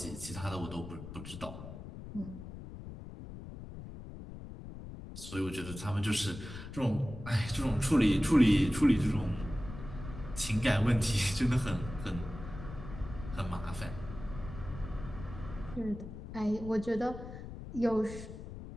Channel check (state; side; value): noise; left; rumble, 11 dB below the sound